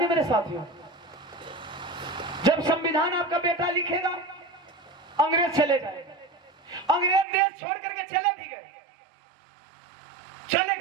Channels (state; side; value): drops out; left; at 7.2 s